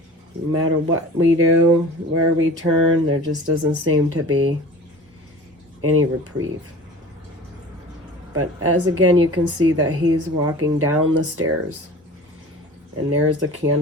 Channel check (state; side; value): normal; both; correlation 0.40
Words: matter what we do, where we turn, there just doesn't seem to be any reprieve. But as again, you can see that he's walking down the stairs, and there's the